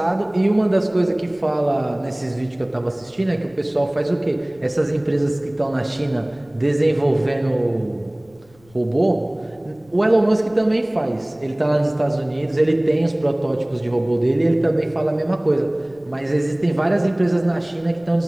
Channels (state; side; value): noise; left; rumble, 30 dB below the sound